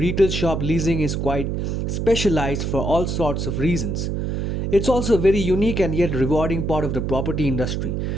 shop leasing is quite specialized for all sorts of reasons. It's also a very unique and yet rewarding part of the property industry.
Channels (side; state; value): right; noise; hum, 1 dB below the sound